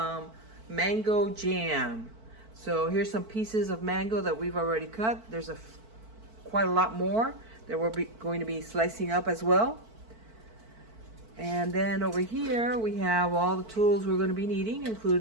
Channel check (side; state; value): left; late; 4.5 ms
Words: mango jam. So here's some pieces of mango that we've already cut. There's quite a lot more that we're going to be slicing up as well. And then over here we have all the tools we're going to be needing,